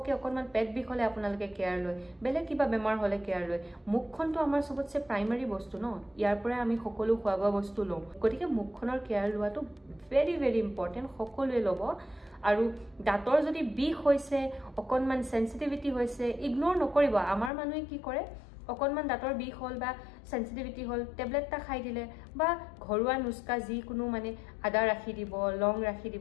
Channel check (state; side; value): drops out; right; at 17.5 s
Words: অকণমান পেট বিষ হ'লে আপোনালোকে কেয়াৰ লয় বেলেগ কিবা বেমাৰ হ'লে কেয়াৰ লয় মুখখনটো আমাৰ চবতছে প্ৰাইমাৰী বস্তু ন ইয়াৰ পৰাই আমি সকলো খোৱা বোৱা বস্তু লওঁ গতিকে মুখখনৰ কেয়াৰ লোৱাটো ভেৰি ভেৰি ইম্পৰ্টেণ্ট সকলোৱে ল'ব আৰু দাঁতৰ যদি বিষ হৈছে অকণমান সেনসিটিভিটি হৈছে ইগনোৰ নকৰিব আমাৰ মানুহে কি কৰে অকণমান দাঁতৰ বিষ হ'ল বা সেনসিটিভিটি হ'ল টেবলেট এটা খাই দিলে বা ঘৰুৱা নুস্কা যিকোনো মানে আদা ৰাখি দিব লং ৰাখি